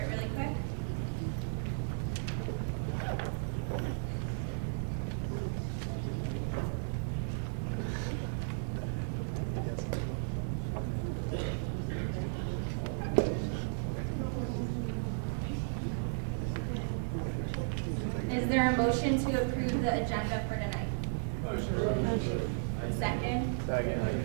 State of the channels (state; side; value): silent; left; digital silence